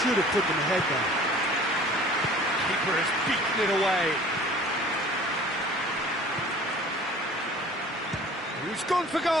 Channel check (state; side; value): normal; both; correlation 0.47